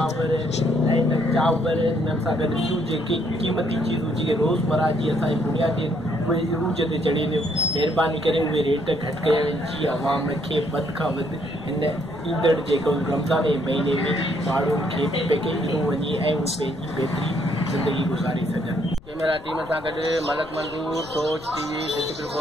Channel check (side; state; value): left; noise; rumble, 21 dB below the sound